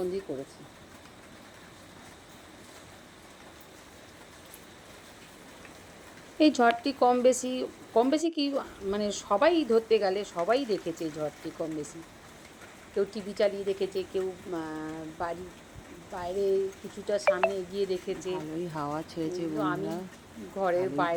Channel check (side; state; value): both; identical; correlation 1.00